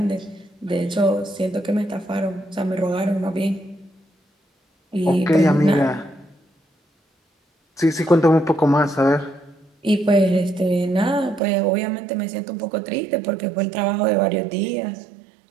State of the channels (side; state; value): left; drops out; at 11.4 s